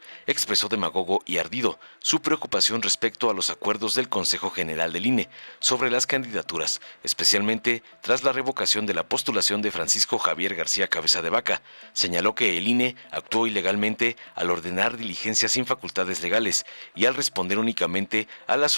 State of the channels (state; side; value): inverted; both; correlation -1.00